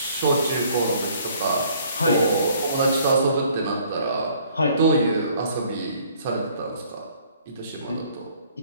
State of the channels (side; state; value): both; inverted; correlation -0.60